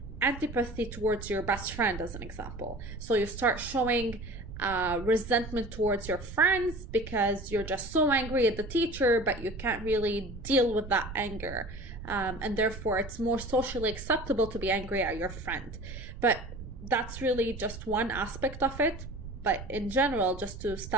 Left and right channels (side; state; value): right; noise; rumble, 11 dB below the sound